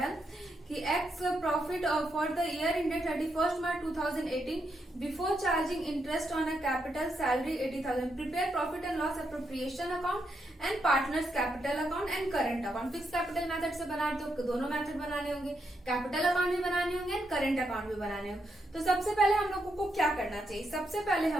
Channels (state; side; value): normal; both; correlation 0.81